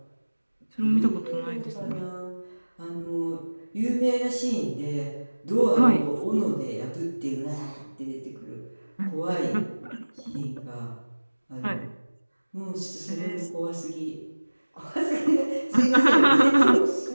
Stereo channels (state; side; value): inverted; both; correlation -1.00